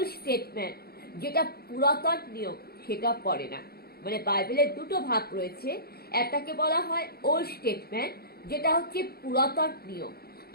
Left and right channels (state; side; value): late; right; 0.45 ms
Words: স্টেটমেন্ট, যেটা পুরাতন নিয়ম, সেটা পড়ে না। মানে বাইবেলের দুটো ভাগ রয়েছে, একটাকে বলা হয় ওল্ড স্টেটমেন্ট, যেটা হচ্ছে পুরাতন নিয়ম,